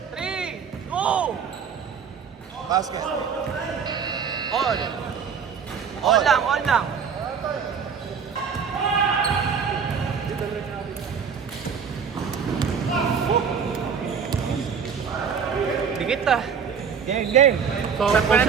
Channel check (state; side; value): quieter; left; 6.6 dB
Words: 3, 2. Basket. All. All lang. All lang. Dikit ah. Game, game. Saan pa na